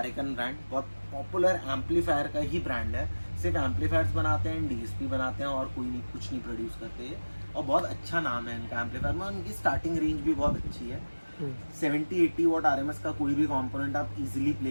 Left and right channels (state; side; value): inverted; both; correlation -1.00